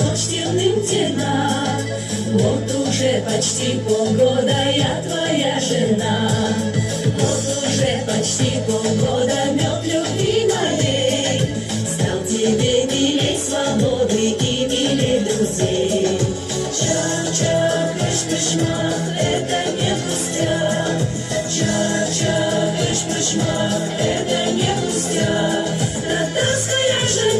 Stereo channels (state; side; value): identical; both; correlation 1.00